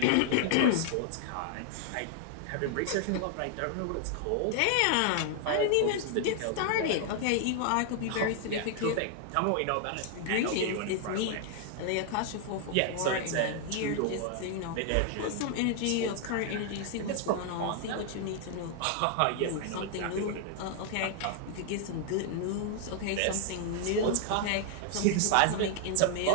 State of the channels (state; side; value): different; both; correlation 0.00